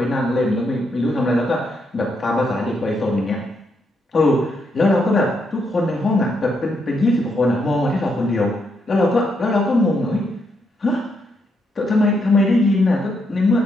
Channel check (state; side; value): normal; both; correlation 0.78